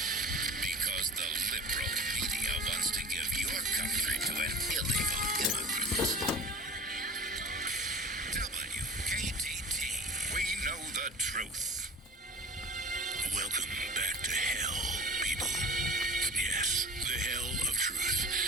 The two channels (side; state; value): both; normal; correlation 0.40